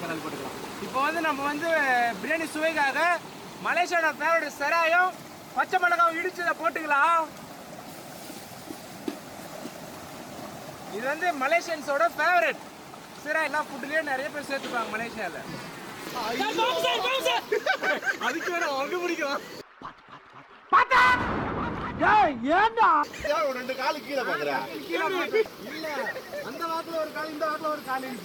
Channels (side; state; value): both; identical; correlation 1.00